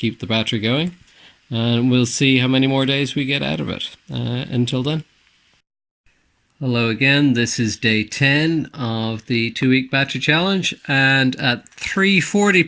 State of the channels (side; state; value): both; identical; correlation 1.00